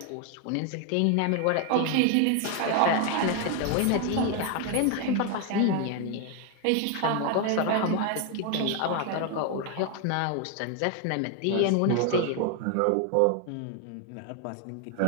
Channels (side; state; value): both; different; correlation 0.01